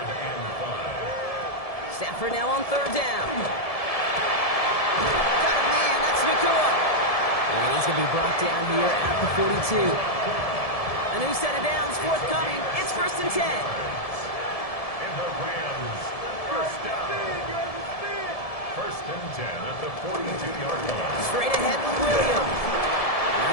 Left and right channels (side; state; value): right; late; 1.7 ms